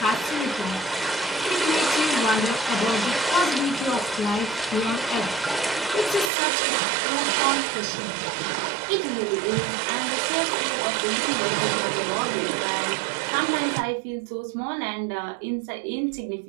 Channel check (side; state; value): left; drops out; at 6.3 s